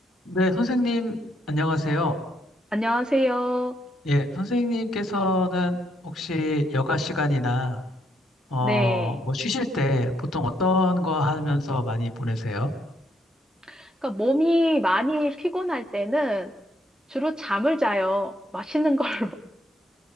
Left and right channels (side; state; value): both; normal; correlation 0.75